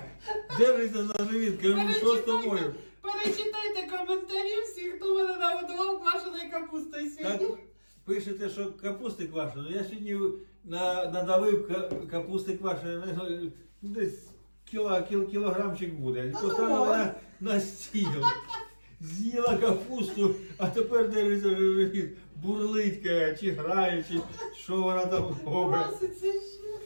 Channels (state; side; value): inverted; both; correlation -1.00